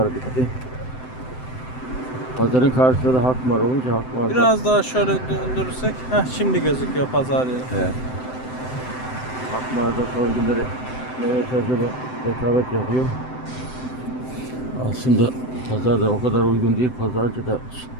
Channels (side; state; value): right; late; 7.8 ms